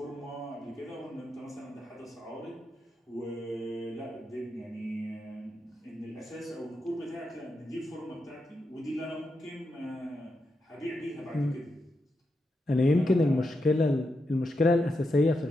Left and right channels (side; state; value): both; normal; correlation 0.86